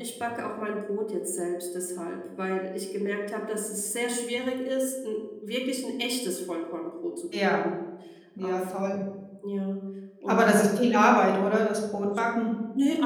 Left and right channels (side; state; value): both; identical; correlation 1.00